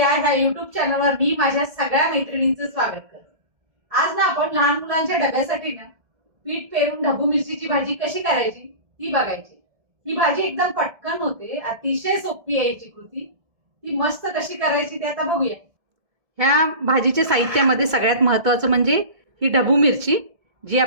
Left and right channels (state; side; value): late; left; 1.7 ms